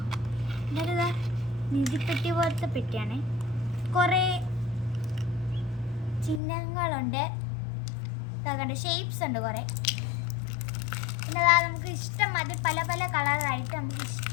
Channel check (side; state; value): right; drops out; at 6.4 s